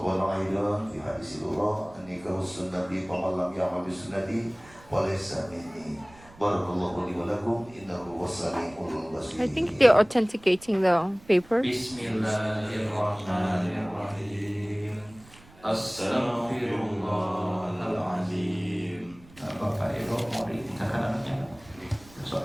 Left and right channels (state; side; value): noise; right; rumble, 24 dB below the sound